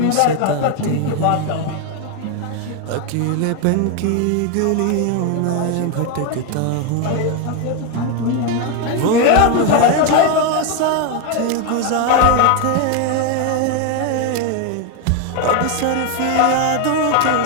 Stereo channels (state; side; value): different; both; correlation 0.01